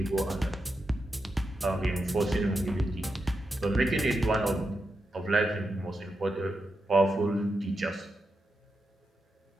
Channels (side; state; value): both; normal; correlation 0.87